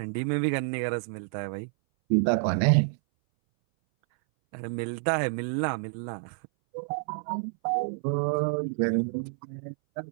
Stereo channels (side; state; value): left; silent; 59 dB below the other